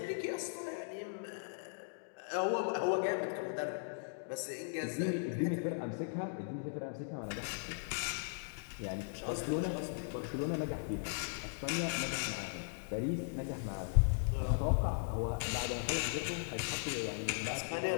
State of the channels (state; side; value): silent; right; digital silence